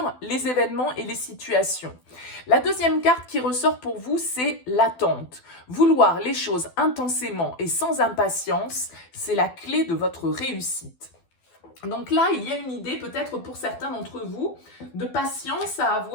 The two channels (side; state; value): right; late; 12 ms